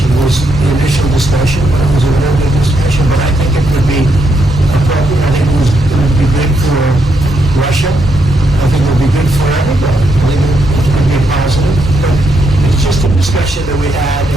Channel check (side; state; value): both; normal; correlation 0.78